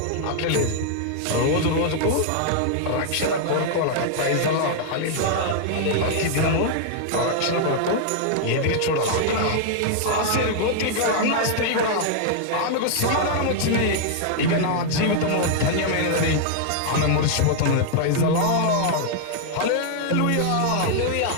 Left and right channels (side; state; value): both; different; correlation 0.00